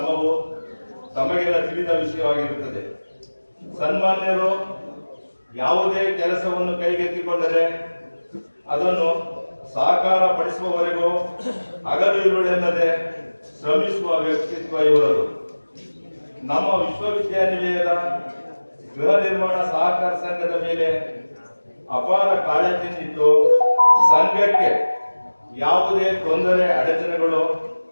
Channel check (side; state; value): both; inverted; correlation -1.00